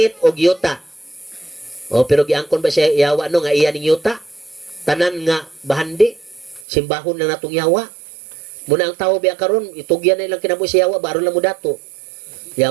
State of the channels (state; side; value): drops out; left; at 6.7 s